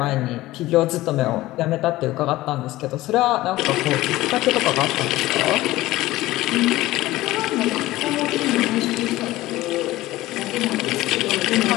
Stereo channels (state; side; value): quieter; right; 17.3 dB